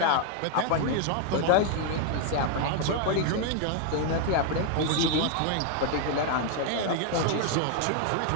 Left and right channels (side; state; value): both; different; correlation 0.00